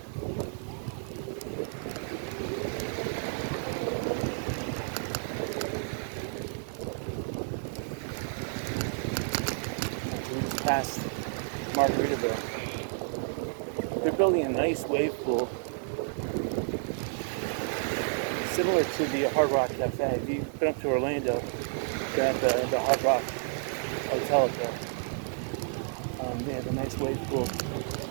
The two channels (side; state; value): left; silent; 57 dB below the other